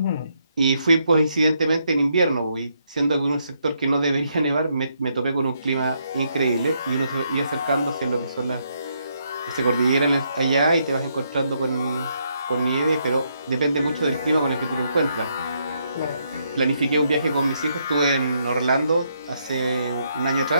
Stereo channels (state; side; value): inverted; both; correlation -0.76